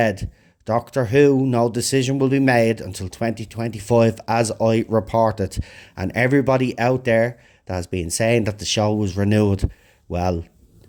Doctor Who, no decision will be made until 2025, as I reported. And everybody out there that has been saying that the show was renewed, well,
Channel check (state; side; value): identical; both; correlation 1.00